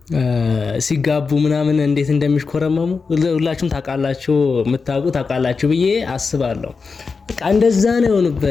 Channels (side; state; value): right; quieter; 4.8 dB